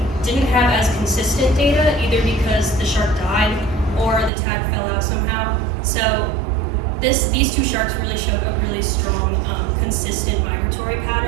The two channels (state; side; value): drops out; left; at 4.3 s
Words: didn't have as consistent data, either because the shark died or the tag fell out somehow. So these 2 sharks really showed a really strong, consistent migratory